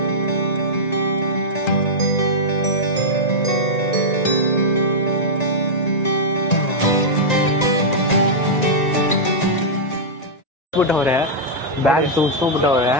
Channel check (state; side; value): late; right; 1.9 ms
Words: ಬಿಟ್ಟವ್ರೆ ಬ್ಯಾಗ್ ತೂಸ್ಕೊಂಡ್ಬಿಟ್ಟವ್ರೆ